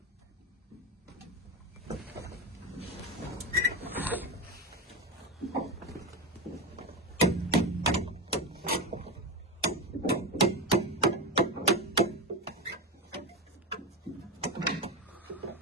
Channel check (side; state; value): both; normal; correlation 0.15